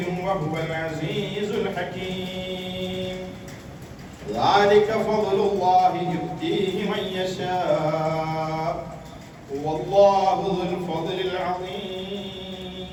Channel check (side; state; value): both; identical; correlation 1.00